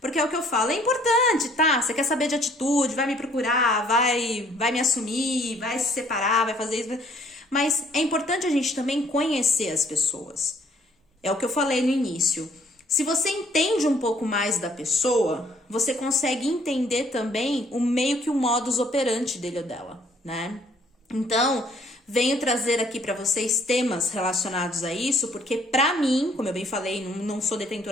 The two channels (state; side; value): normal; both; correlation 0.62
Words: Porque é o que eu falo, é importante, tá? Você quer saber de atitude, vai me procurar, vai me assumir, vai se separar, vai fazer isso. Mas é importante a gente também conhecer as pessoas. É o que eu falei no início. Se você entende um pouco mais da pessoa, você consegue entender também o meio que o modus operandi dele ou dela, né? Então, venho trazer aqui para vocês temas relacionados a isso, porque pra mim, como eu bem falei, não sou